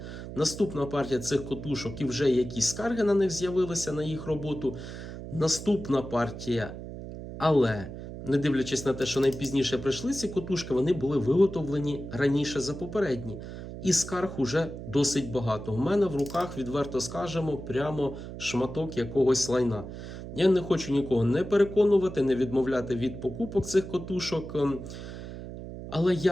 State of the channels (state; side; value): noise; right; hum, 10 dB below the sound